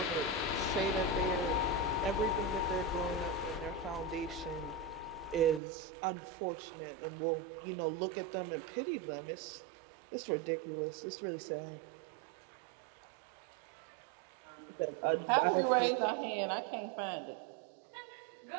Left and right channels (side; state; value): left; drops out; at 5.6 s